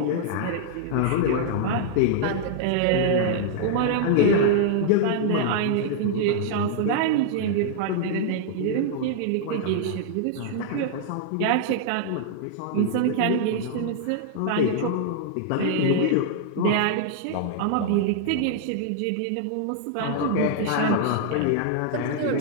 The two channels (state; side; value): different; both; correlation -0.01